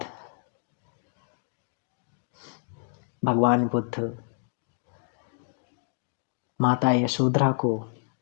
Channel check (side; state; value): right; silent; 59 dB below the other